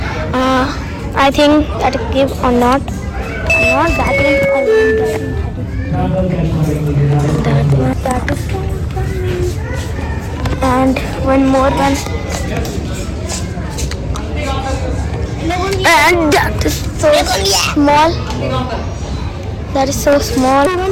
I think that give or not. Not that one. That one. That is. And one more one. And that is so small. That is so small.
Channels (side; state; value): both; identical; correlation 1.00